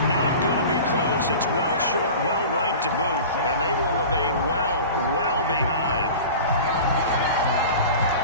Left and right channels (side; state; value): both; inverted; correlation -0.36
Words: not going to be close. It's well short, well right to boot. And they will remain well behind.